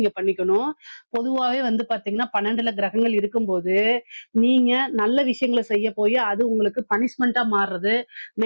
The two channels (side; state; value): both; inverted; correlation -1.00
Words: பண்ணிக்கணும். பொதுவாவே வந்து பாத்தீங்கன்னா 12ல கிரகங்கள் இருக்கும்போது நீங்க நல்ல விஷயங்களை செய்ய போய் அது உங்களுக்கு பனிஷ்மெண்டா மாறுறது,